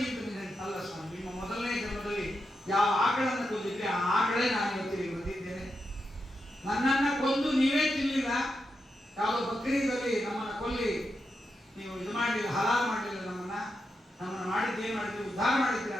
ಅಂತ ಅಲ್ಲ ಸ್ವಾಮಿ, ನಿಮ್ಮ ಮೊದಲನೇ ಜನ್ಮದಲ್ಲಿ ಯಾವ ಆಕಳನ್ನು ಕೊಂದಿದ್ರೆ ಆ ಆಕಳೇ ನಾನು ಇವತ್ತಿಗೆ ಬಂದಿದ್ದೇನೆ. ನನ್ನನ್ನ ಕೊಂದು ನೀವೇ ತಿನ್ನಲಿಲ್ಲ, ಯಾವುದೋ ಬಕ್ರೀದಲ್ಲಿ ನಮ್ಮನ್ನ ಕೊಲ್ಲಿ ನೀವು ಇದು ಮಾಡಲಿಲ್ಲ, ಹಲಾಲ್ ಮಾಡಲಿಲ್ಲ, ನಮ್ಮನ್ನ ಮಾಡಿದ್ದೇನು ಮಾಡಿದ್ರಿ, ಉದ್ಧಾರ ಮಾಡಿದ್ರಿ.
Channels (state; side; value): normal; both; correlation 0.86